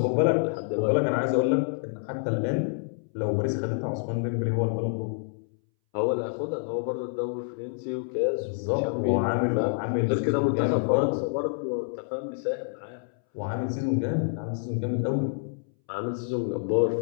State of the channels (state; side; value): silent; right; 60 dB below the other